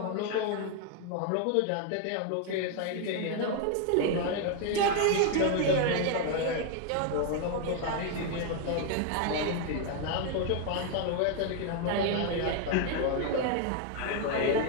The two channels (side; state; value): both; different; correlation 0.01